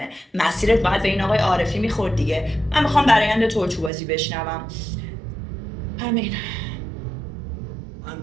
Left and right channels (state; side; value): drops out; left; at 3.9 s